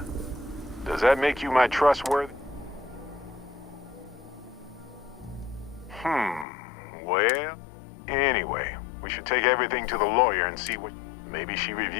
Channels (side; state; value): right; drops out; at 6.5 s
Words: does that make you my trustworthy? Well, anyway, we should take everything to the lawyer and see what... Maybe she